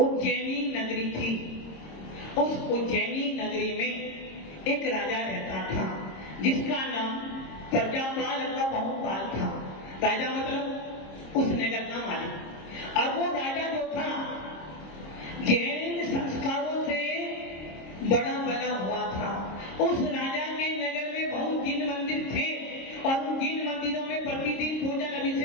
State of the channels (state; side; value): late; right; 26 ms